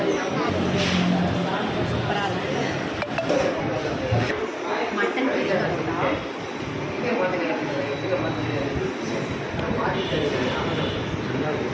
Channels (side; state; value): both; identical; correlation 1.00